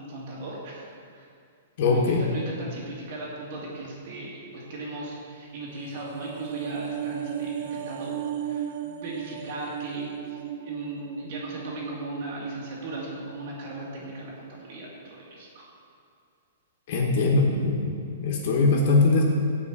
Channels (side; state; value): both; inverted; correlation -0.34